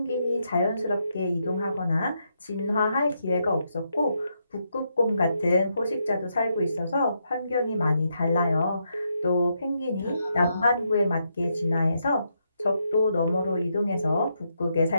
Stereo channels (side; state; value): both; inverted; correlation -0.80